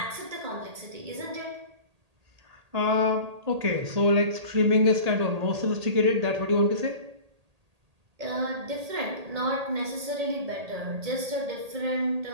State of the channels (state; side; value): late; left; 1.8 ms